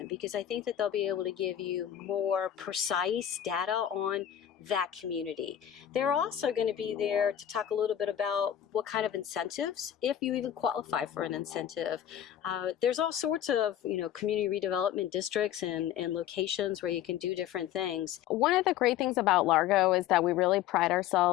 because I think that they'll be able to give you more precise data on that community. They're also going to be there to talk a little bit about what kind of incentives, if you even qualify for an incentive. There's all sorts of, community redevelopment districts and locations where you can do different things. One of the great things about Largo is that we really pride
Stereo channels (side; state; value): right; quieter; 10.7 dB